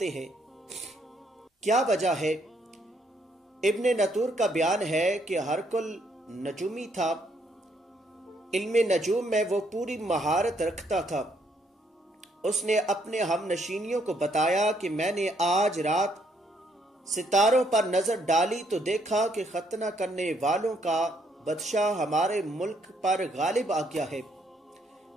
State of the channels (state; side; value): normal; both; correlation 0.71